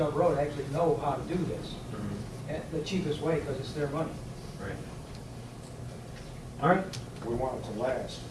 Road actually know how to do this. And the cheapest way, because it's their money. Right. All right. We want it to last.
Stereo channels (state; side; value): identical; both; correlation 1.00